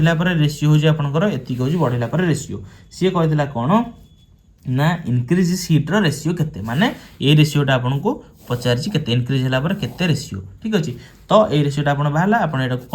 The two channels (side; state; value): both; identical; correlation 1.00